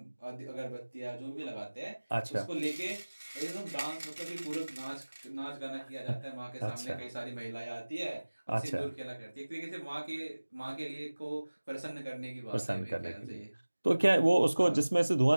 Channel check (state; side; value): inverted; both; correlation -1.00